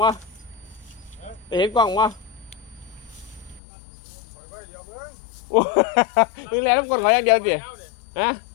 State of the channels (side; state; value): right; drops out; at 3.6 s